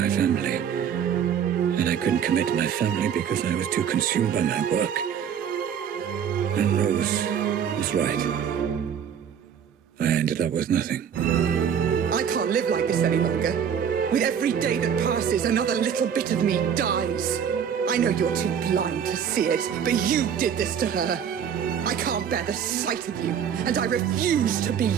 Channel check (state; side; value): quieter; left; 8.2 dB